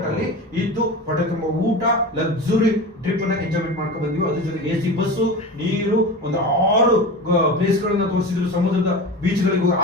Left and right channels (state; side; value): normal; both; correlation 0.29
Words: ಅಲ್ಲಿ ಇದ್ದು ಹೊಟ್ಟೆ ತುಂಬ ಊಟ, ಲಕ್ಸುರಿ ಟ್ರಿಪ್ ಅನ್ನ ಎಂಜಾಯ್ಮೆಂಟ್ ಮಾಡ್ಕೊಂಡು ಬಂದಿವಿ. ಅದ್ರ ಜೊತೆಗೆ AC ಬಸ್ಸು, ನೀರು, ಒಂದು 6 ಪ್ಲೇಸ್ ಗಳನ್ನ ತೋರಿಸಿದ್ರು. ಸಮುದ್ರದ ಬೀಚ್ ಗಳಿಗೆ